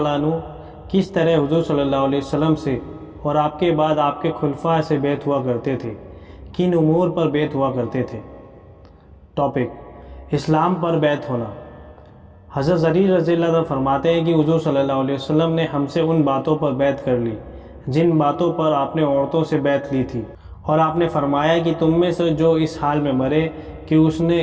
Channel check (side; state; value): both; identical; correlation 1.00